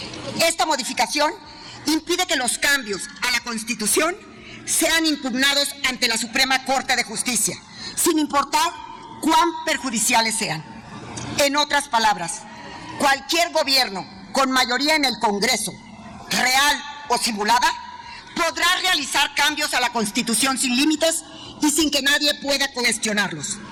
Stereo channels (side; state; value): both; identical; correlation 1.00